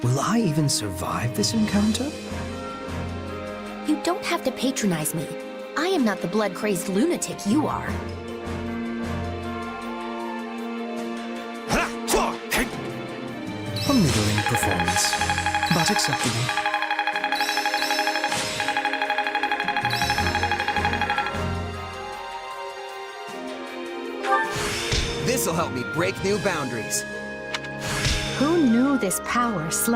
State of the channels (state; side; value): identical; both; correlation 1.00